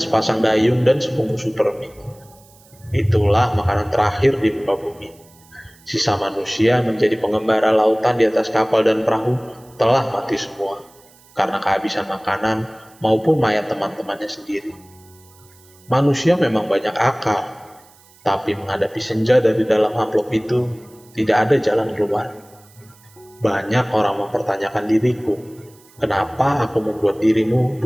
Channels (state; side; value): noise; right; hiss, 28 dB below the sound